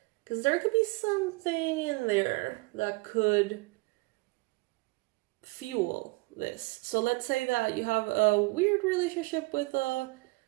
Because there could be something in there that could fuel this. So let's say that you have a weird relationship with a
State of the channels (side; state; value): left; quieter; 25.0 dB